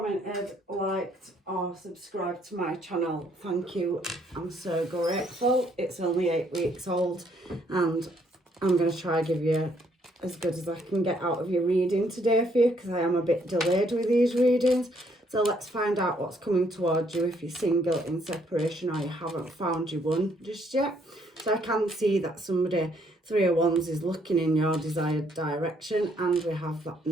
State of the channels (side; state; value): both; normal; correlation 0.69